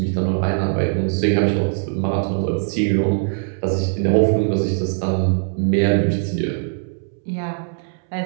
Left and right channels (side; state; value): left; silent; 65 dB below the other